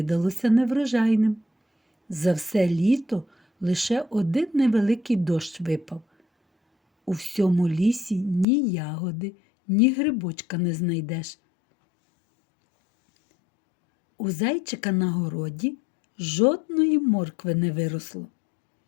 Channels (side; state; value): right; drops out; at 8.5 s